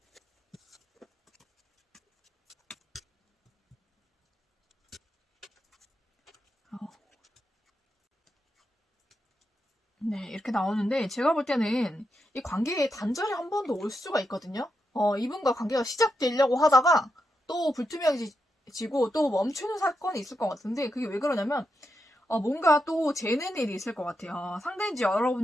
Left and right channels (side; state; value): both; normal; correlation 0.85